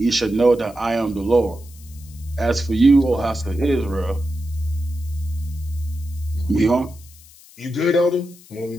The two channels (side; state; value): left; noise; hiss, 23 dB below the sound